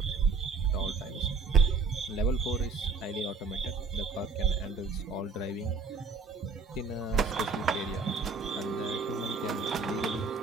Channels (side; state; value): left; quieter; 4.5 dB